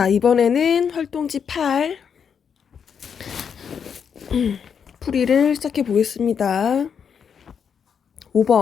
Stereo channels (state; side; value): quieter; right; 7.1 dB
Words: 이번에는 활동지 8 풀이를 시작해 보겠습니다.